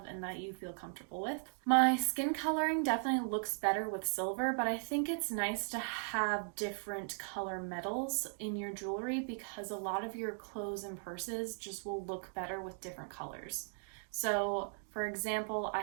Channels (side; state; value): left; silent; 53 dB below the other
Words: and that you feel comfortable with. My skin coloring definitely looks better with silver, but I think it's nice to have different color metals in your jewelry because a lot of your clothes and purses just will look better with different colors. So, for example, I